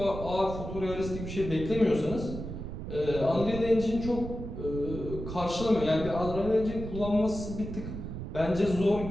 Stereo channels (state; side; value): noise; right; rumble, 8 dB below the sound